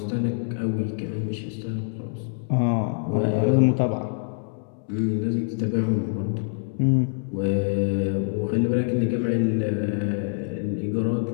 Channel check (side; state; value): right; silent; digital silence